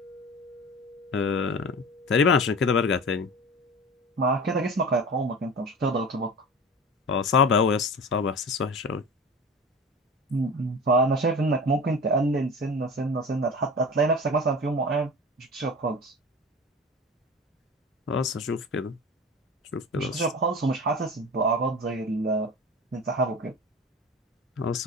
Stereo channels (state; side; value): normal; both; correlation 0.34